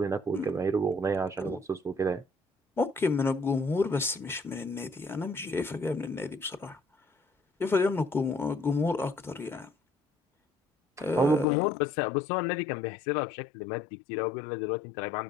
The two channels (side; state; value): right; drops out; at 11.5 s